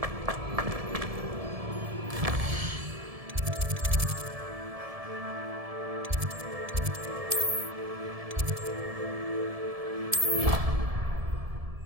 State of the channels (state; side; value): late; left; 1.7 ms